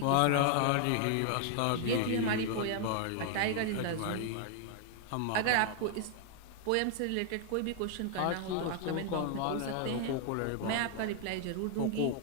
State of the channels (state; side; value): different; both; correlation 0.00